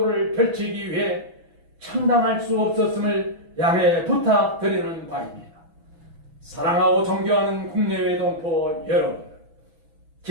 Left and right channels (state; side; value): late; left; 6.1 ms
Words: 펼치기 위해 창당할 수 없었음을 양해 부탁드리는 바입니다. 사랑하고 존경하는 국내외 동포 여러분,